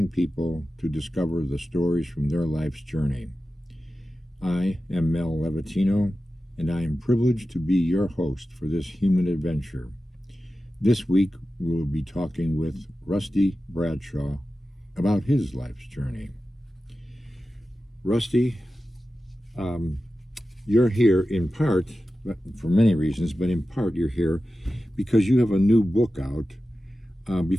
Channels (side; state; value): both; normal; correlation 0.93